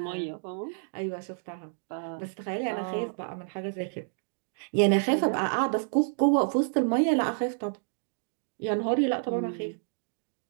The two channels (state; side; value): silent; left; digital silence